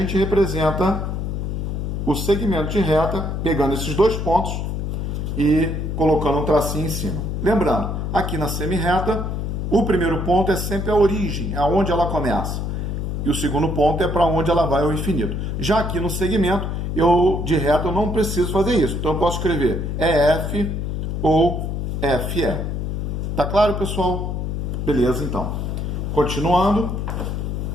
representa o segmento de reta, pegando esses dois pontos e colocando um tracinho em cima. Lembrando, aqui na semi-reta, o primeiro ponto é sempre a origem, é onde ela começa. E o segundo ponto é para onde ela vai ao infinito. Já aqui no segmento, de reta, eu não preciso fazer isso. Então eu posso escrever EF ou FE. Tá claro, pessoal? Beleza, então. Continuando.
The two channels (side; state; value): left; noise; hum, 2 dB below the sound